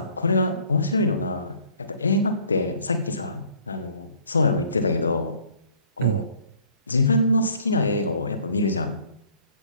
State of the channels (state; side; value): inverted; both; correlation -0.57